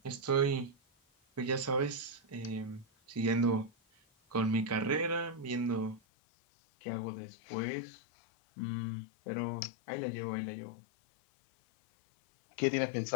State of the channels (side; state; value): right; drops out; at 6.0 s